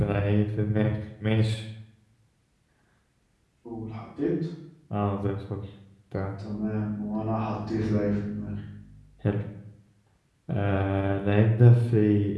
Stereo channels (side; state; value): both; identical; correlation 1.00